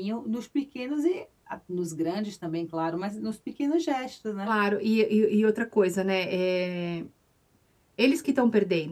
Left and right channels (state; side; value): identical; both; correlation 1.00